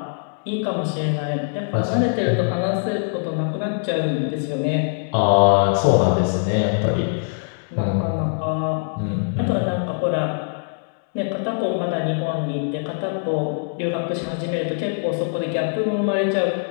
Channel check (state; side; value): silent; right; digital silence